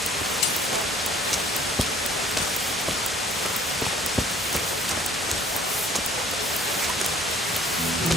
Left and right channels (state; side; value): normal; both; correlation 0.56